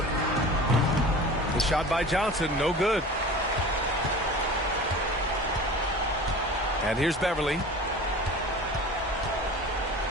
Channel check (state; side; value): normal; both; correlation 0.38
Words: The shot by Johnson, no good. And here's Beverly.